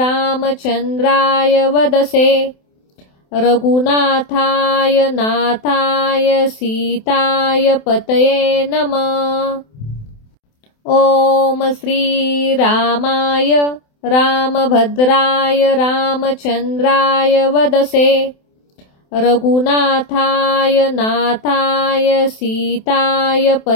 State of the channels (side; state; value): right; late; 28 ms